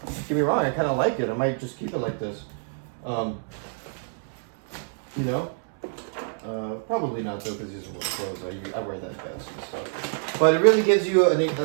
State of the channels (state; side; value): silent; left; 61 dB below the other